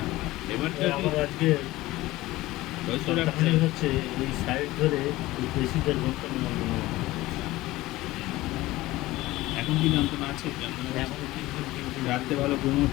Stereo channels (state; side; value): quieter; right; 18.1 dB